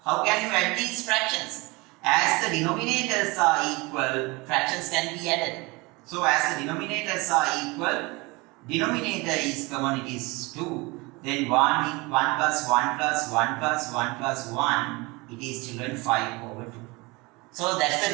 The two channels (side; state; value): left; quieter; 24.9 dB